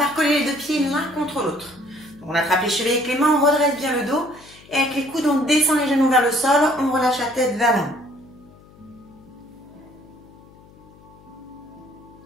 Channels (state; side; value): noise; left; hum, 24 dB below the sound